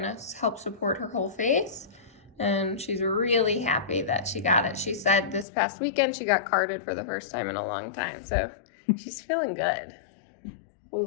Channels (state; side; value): drops out; right; at 5.5 s